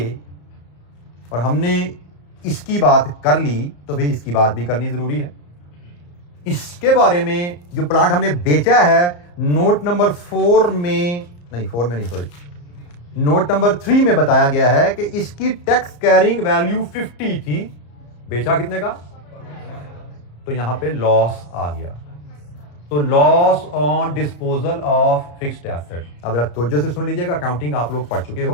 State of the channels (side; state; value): right; late; 34 ms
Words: और हमने इसकी बात कर ली तो भाई इसकी बात भी करनी जरूरी है। इसके बारे में जो प्लांट हमने बेचा है नोट नंबर 4 में नहीं, 4 में नहीं, सॉरी, नोट नंबर 3 में बताया गया है कि इसकी टैक्स कैरिंग वैल्यू 50 थी। बेचा कितने का? तो यहां पे लॉस आ गया। तो loss on disposal of fixed asset. अब जरा तवज्जो से सुन लीजिएगा, अकाउंटिंग आप लोग पढ़ चुके